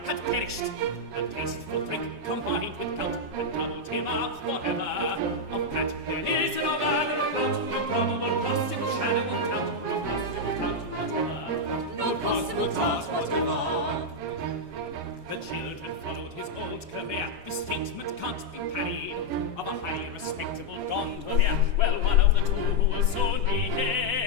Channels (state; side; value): late; left; 7.3 ms